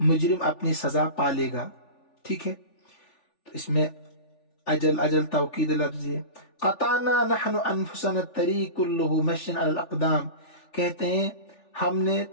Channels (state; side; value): late; right; 3.4 ms